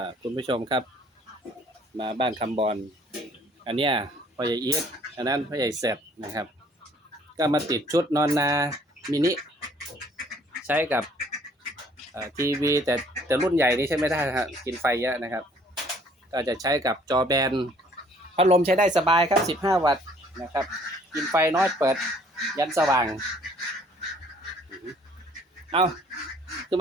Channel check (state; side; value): normal; both; correlation 0.59